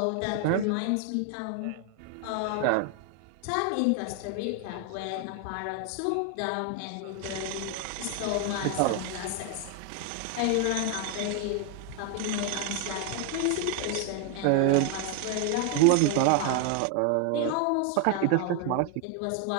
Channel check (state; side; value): different; both; correlation 0.01